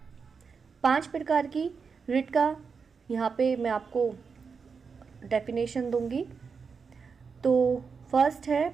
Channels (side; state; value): left; quieter; 5.5 dB